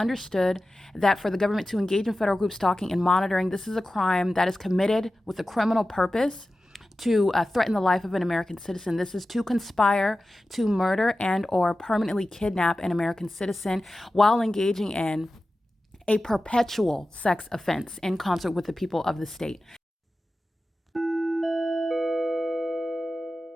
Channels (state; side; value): normal; both; correlation 0.94